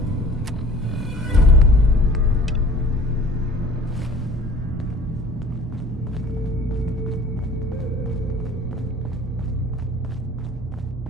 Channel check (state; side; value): normal; both; correlation 0.48